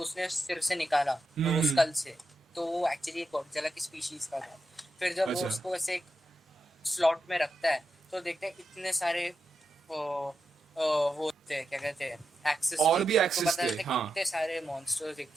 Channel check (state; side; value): normal; both; correlation 0.88